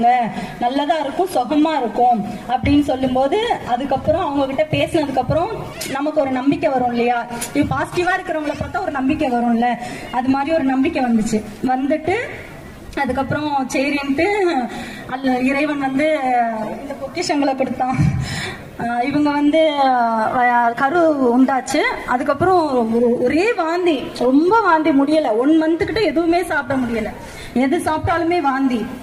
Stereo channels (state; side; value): identical; both; correlation 1.00